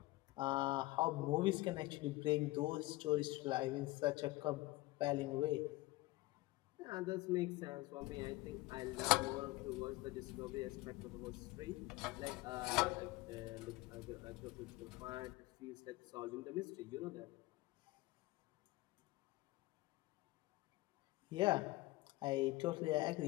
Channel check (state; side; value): quieter; right; 19.9 dB